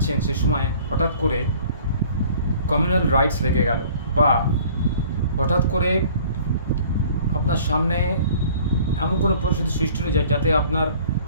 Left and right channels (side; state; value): both; inverted; correlation -0.51